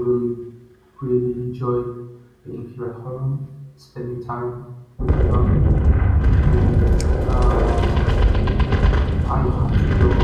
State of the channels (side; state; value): both; identical; correlation 1.00